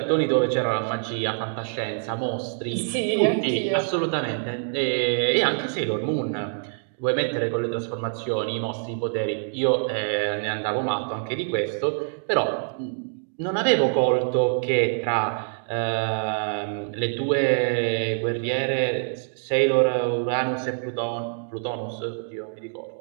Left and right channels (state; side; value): silent; left; digital silence